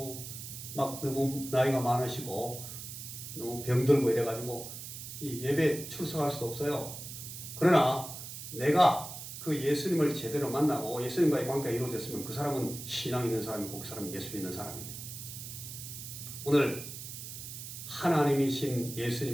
막 너무 나이가 많으시고 너무 병들고 이래가지고 이 예배 출석할 수도 없어요. 그러나 내가 그 예수님을 제대로 만나고 예수님과의 관계가 이루어졌으면 그 사람은 신앙 있는 사람이고 그 사람은 예수 믿는 사람입니다. 오늘 하나님이신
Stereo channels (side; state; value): right; noise; hiss, 10 dB below the sound